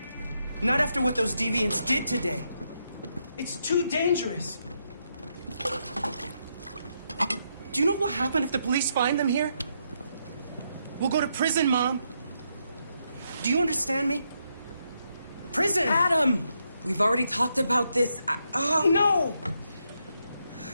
Not after what those deviants did today. It's too dangerous. Do you know what will happen if the police find them here? We'll go to prison, Mom. Do you understand me? Prison! Adam! We've already talked about this. No!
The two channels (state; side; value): inverted; both; correlation -0.79